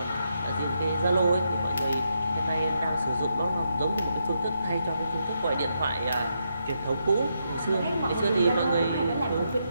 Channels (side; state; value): both; inverted; correlation -0.81